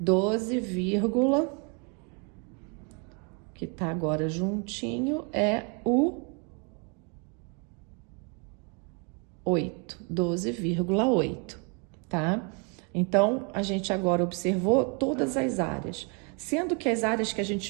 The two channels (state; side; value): quieter; left; 35.6 dB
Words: 12, que tá agora juntinho, é o 8, 12,8, tá? Então, a gente agora observou todas as áreas, sendo que as áreas que a